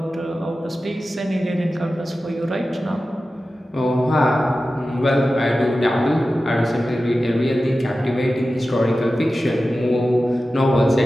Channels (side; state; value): both; normal; correlation 0.94